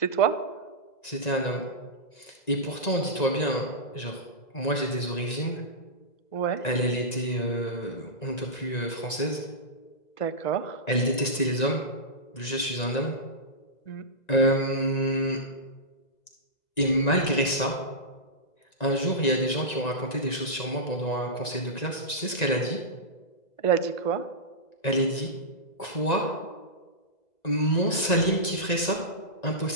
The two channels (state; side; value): late; right; 1.9 ms